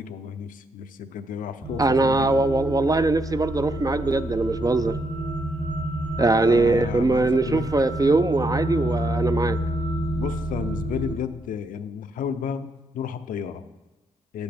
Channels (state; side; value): normal; both; correlation 0.76